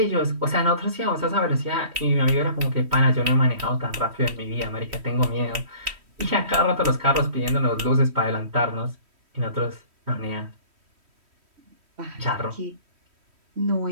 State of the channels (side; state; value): left; late; 3.1 ms